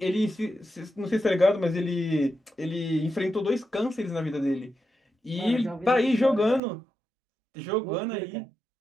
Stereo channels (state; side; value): drops out; left; at 6.6 s